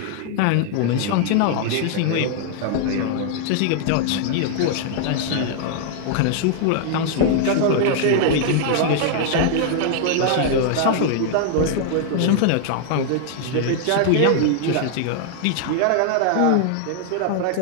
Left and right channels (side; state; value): both; different; correlation 0.00